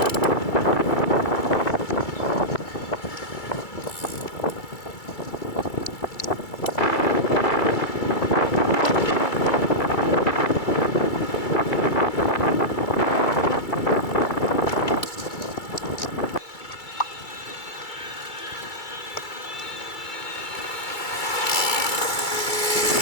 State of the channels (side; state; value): right; late; 2.3 ms